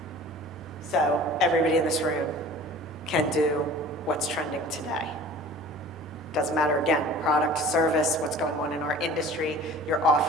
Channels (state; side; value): normal; both; correlation 0.44